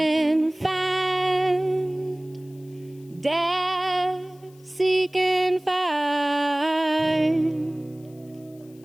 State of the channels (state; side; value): noise; left; hiss, 29 dB below the sound